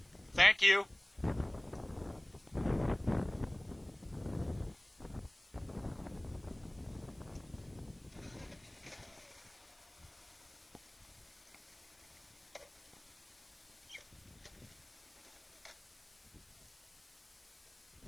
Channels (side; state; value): left; noise; hiss, 30 dB below the sound